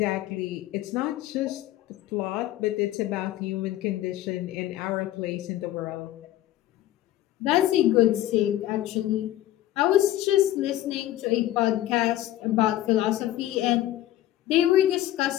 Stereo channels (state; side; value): quieter; right; 14.0 dB